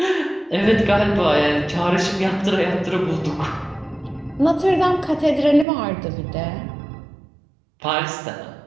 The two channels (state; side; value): drops out; left; at 5.7 s